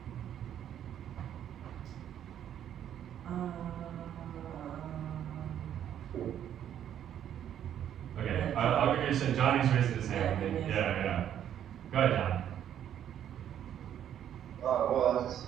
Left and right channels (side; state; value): left; quieter; 10.2 dB